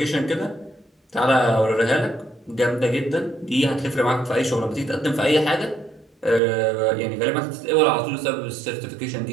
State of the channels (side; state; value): left; drops out; at 6.4 s